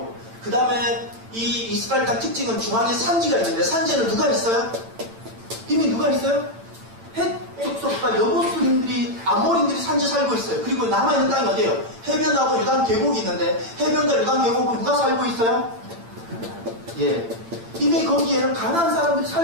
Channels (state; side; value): late; left; 8.9 ms